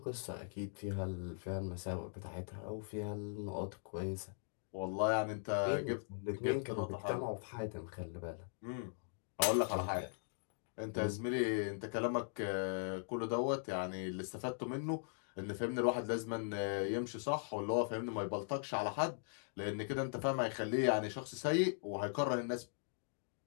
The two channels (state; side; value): silent; right; digital silence